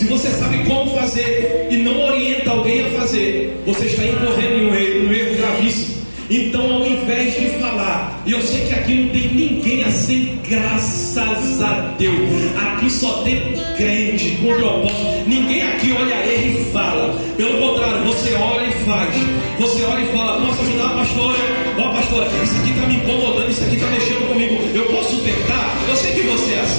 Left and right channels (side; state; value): both; inverted; correlation -1.00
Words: você sabe como fazer e não orienta alguém a fazer, você está incorrendo em um erro gravíssimo. Então, ao invés de falar, e eu sei que aqui não tem ninguém assim, graças a Deus, aqui só tem crente com propósito. Ninguém aqui olha ele e fala. Pelo contrário, você olha e faz. Você olha e fala: posso ajudar a pastora? Ó, pastora, isso aqui está me incomodando, isso aqui está mexendo comigo. Eu posso tentar? Eu sei que você é